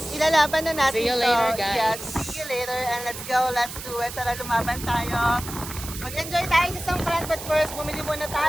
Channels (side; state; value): right; noise; hiss, 10 dB below the sound